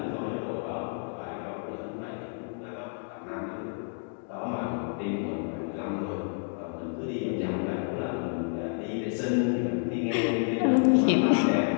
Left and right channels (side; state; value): right; silent; 58 dB below the other